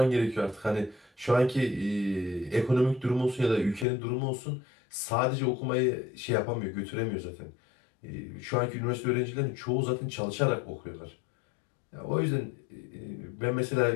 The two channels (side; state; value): right; drops out; at 3.9 s